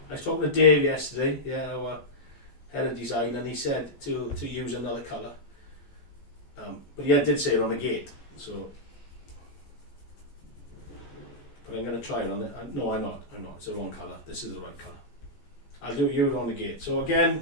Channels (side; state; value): right; late; 14 ms